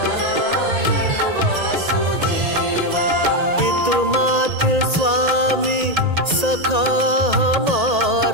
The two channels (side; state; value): left; late; 1.8 ms